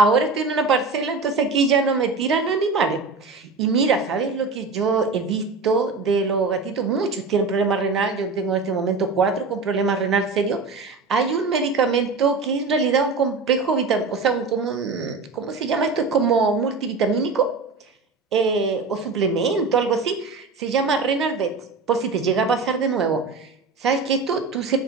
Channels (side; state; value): left; quieter; 4.1 dB